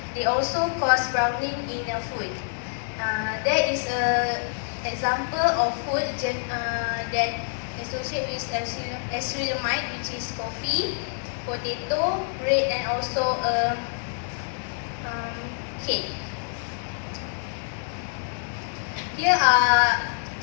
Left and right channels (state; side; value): silent; right; digital silence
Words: They also cause browning in a food. There is an example of food that associate with acrylamide, which is coffee, potato, bread, and also cake. Here are